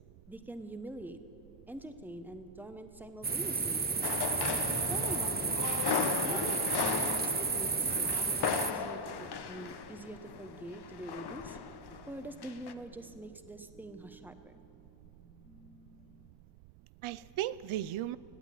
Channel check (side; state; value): right; noise; rumble, 22 dB below the sound